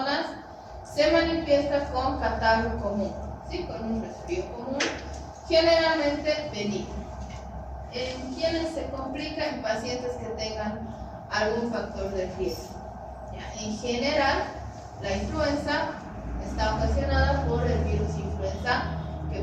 se manifiesta con catarro común, ¿sí? Con un resfrío común, generalmente benigno. En quienes se complica, en pacientes que tengan algún factor de riesgo. ¿Ya? En general, la influenza está ocasionada por el virus influenza, que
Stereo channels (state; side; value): identical; both; correlation 1.00